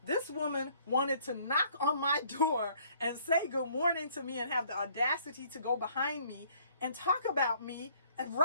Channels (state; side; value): inverted; both; correlation -0.60